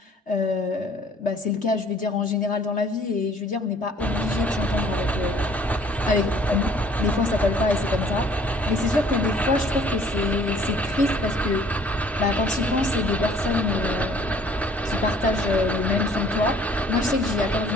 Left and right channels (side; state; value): both; normal; correlation 0.56